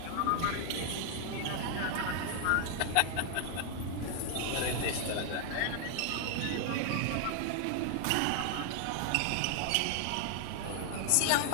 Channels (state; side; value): different; both; correlation 0.00